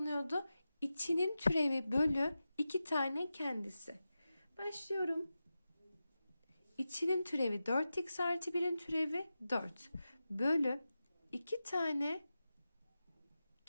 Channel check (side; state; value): both; inverted; correlation -0.92